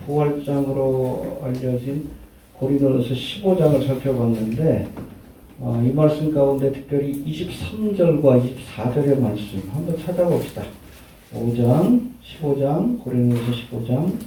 부활장으로 알려진 고린도전서 15장을 살펴봤는데 이 말씀 가운데 특별히 23절과 24절의 말씀 한번 찾아봅시다. 15장, 고린도전서 15장,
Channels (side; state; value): both; identical; correlation 1.00